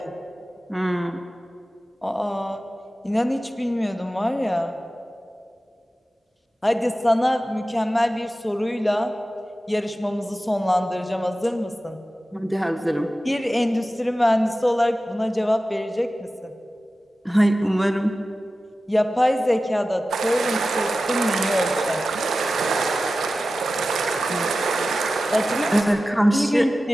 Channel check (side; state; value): both; normal; correlation 0.95